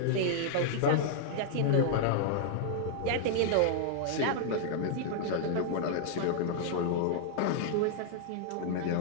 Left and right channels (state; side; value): different; both; correlation -0.01